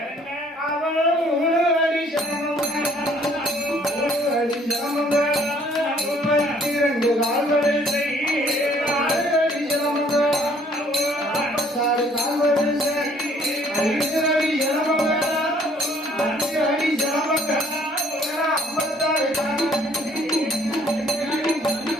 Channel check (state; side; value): normal; both; correlation 0.60